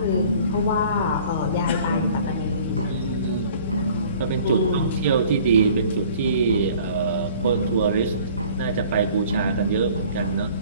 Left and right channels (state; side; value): inverted; both; correlation -0.51